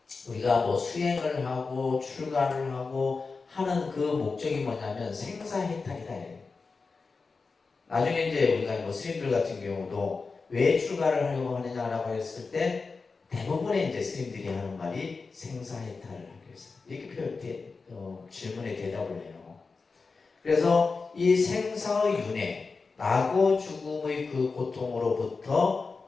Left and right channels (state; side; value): quieter; right; 4.4 dB